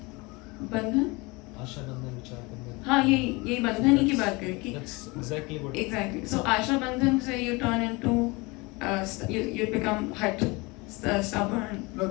बंधन? आशा बंधन, विचार बंधन. हाँ, ये बंधन ही की बात करें कि. That's exactly what. Exactly. So आशा बंधन से you turn into, you become hurt, stubborn. No,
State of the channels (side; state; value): right; quieter; 25.3 dB